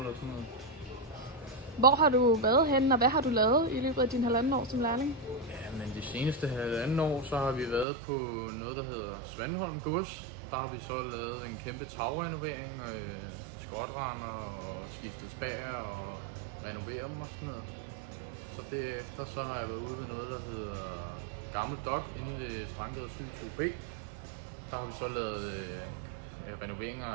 sådan noget. Hvor har du været henne, og hvad har du lavet i løbet af din halvanden år som lærling? Ja, men de seneste halvanden år, så har vi været på noget, der hedder Svanholm Gods. Der har vi så lavet en kæmpe tagrenovering, skotrender og skiftet spær og renoveret dem og sådan noget. Så derefter så har jeg været ude ved noget, der hedder Gammel Dok inde ved Strandgade 7-2B. Der har vi så lavet renoveringer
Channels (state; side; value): drops out; left; at 7.9 s